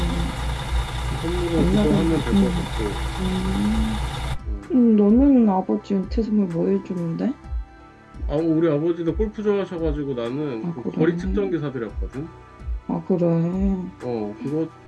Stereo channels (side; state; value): both; identical; correlation 1.00